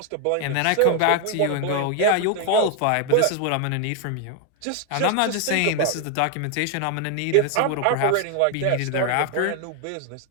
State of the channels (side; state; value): both; different; correlation 0.01